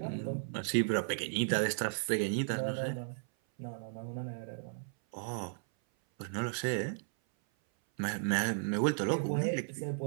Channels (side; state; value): left; silent; 55 dB below the other